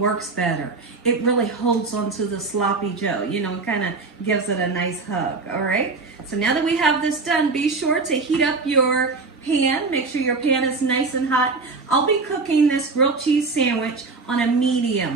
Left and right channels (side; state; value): left; quieter; 4.0 dB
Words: works better. It really holds onto the Sloppy Joe, you know, it kind of gives it a nice hug, all right? So now that we have this done, be sure to heat up your pan. Make sure your pan is nice and hot. I'll be cooking this grilled cheese sandwich on a